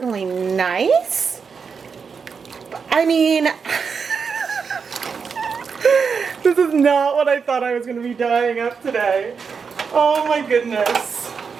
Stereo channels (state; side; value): quieter; left; 5.8 dB